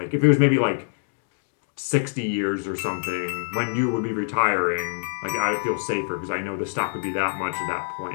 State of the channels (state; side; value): silent; right; digital silence